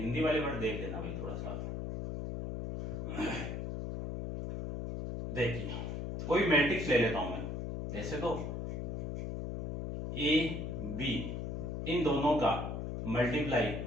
वाले वर्ड देख लेना भाई थोड़ा सा। देखिए कोई मैट्रिक्स ले लेता हूं मैं, ऐसे तो ए बी, इन दोनों का multiply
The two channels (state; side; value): noise; left; hum, 4 dB below the sound